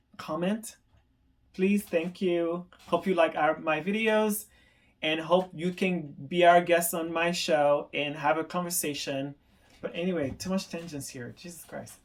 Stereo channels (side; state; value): both; identical; correlation 1.00